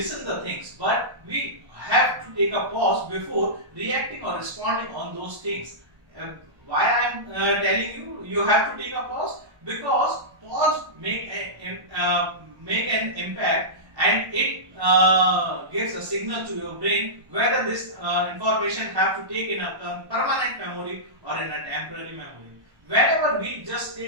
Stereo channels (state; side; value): late; left; 1.3 ms